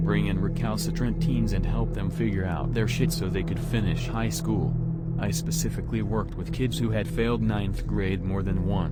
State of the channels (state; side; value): identical; both; correlation 1.00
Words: in recalcitrant teens and help them figure out their shit so they could finish high school. I specifically worked with kids who had failed 9th grade more than